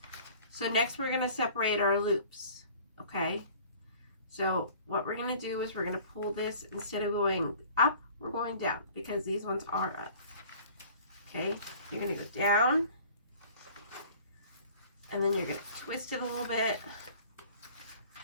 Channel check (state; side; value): inverted; both; correlation -0.48